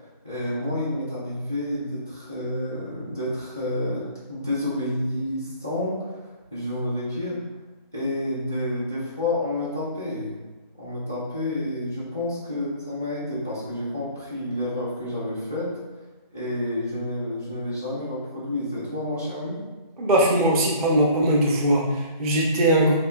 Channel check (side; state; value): both; inverted; correlation -0.50